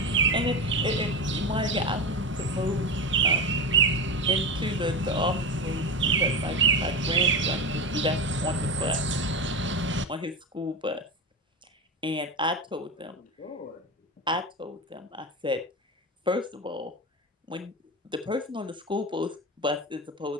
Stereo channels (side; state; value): both; normal; correlation 0.18